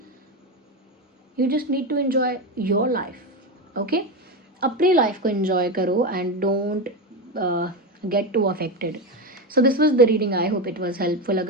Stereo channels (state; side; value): normal; both; correlation 0.16